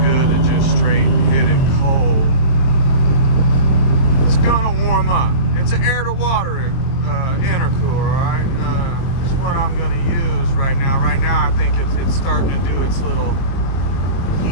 good to just straight hit it cold. It's gonna warm up. It's an air to water intercooler, alright? This is what I'm gonna use right now. Right now I think it's starting to do its little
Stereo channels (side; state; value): right; late; 22 ms